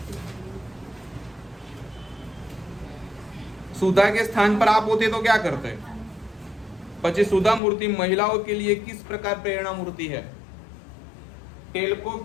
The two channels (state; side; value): drops out; right; at 7.6 s